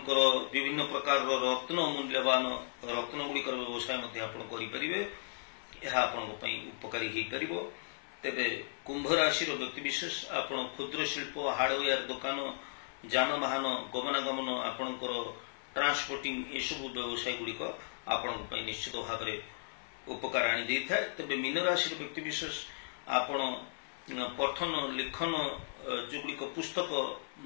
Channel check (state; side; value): silent; right; 54 dB below the other